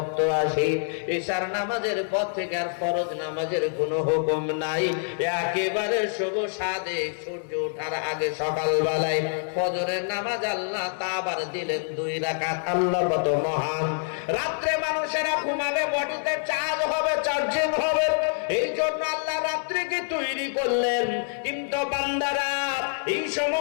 আসে, এশার নামাজের পর থেকে আর ফরজ নামাজের কোনো হুকুম নাই। একেবারে শুভ সাদে সূর্য ওঠার আগে সকালবেলায় ফজরের নামাজ আল্লাহ তা আবার দিলেন 2 রাকাত। আল্লাহ কত মহান। রাত্রে মানুষেরা ঘুমাবে, বডিতে চার্জ হবে, চার্জিং হবে, এই জন্য আল্লাহ রাত্রিকে তৈরি করলেন। কিন্তু বান্দারা, এই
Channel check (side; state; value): right; silent; 61 dB below the other